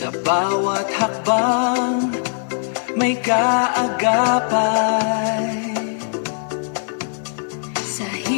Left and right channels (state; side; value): silent; right; 65 dB below the other